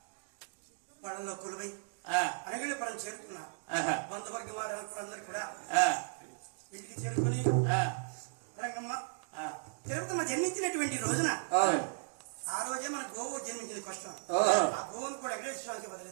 పళ్ళలో కొలువై అనగలి పడం చేరుకున్నారు. బంధువర్గ వారందరూ కూడా ఇంటికి చేరుకుని రంగమ్మ తిరుపతమ్మ జన్మించినటువంటి రోజున ఆ రోజే మన గోవు జన్మించిన కష్టం. ఆ గోవును కూడా ఎగరేశ్వరానికి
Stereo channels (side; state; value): left; silent; digital silence